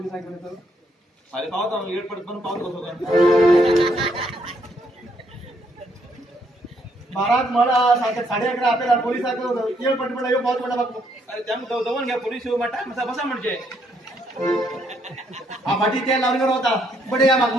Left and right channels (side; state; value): both; normal; correlation 0.72